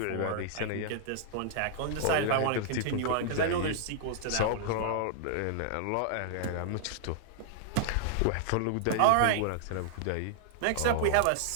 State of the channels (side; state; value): both; different; correlation -0.01